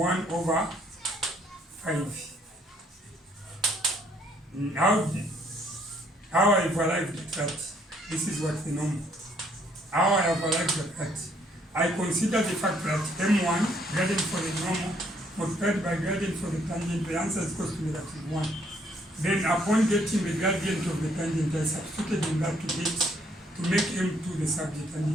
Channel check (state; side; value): normal; both; correlation 0.66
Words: over 5. How I've arrived at that, this is what the normal. How I have arrived at that, I consider the fact that m1, gradient for the normal, multiplied by gradient for the tangent, the answer is equal to negative 1. Then upon getting the gradient of the tangent, I substituted in that to make m2 the subject,